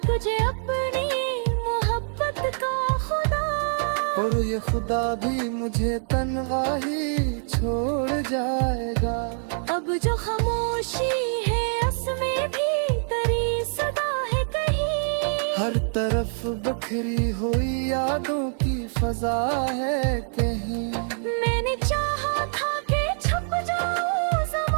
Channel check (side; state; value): left; silent; digital silence